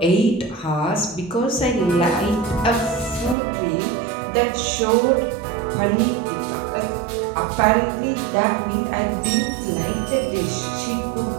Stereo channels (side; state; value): left; drops out; at 3.4 s